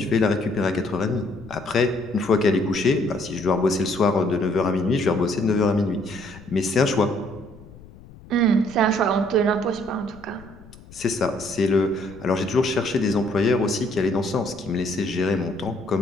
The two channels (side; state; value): left; noise; rumble, 21 dB below the sound